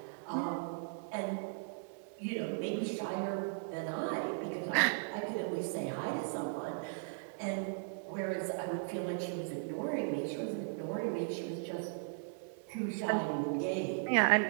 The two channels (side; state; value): left; silent; 53 dB below the other